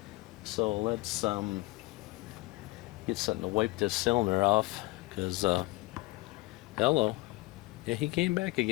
So let's get something to wipe this cylinder off, because, hello. Yeah, he came back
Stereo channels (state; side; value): quieter; right; 21.4 dB